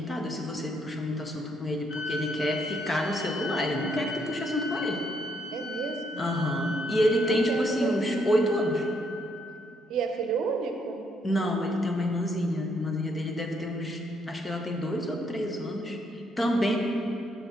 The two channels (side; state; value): both; normal; correlation 0.73